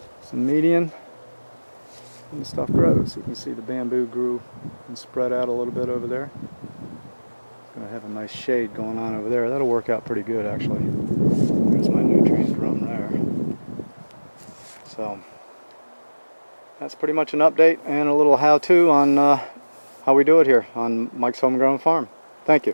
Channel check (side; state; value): both; inverted; correlation -1.00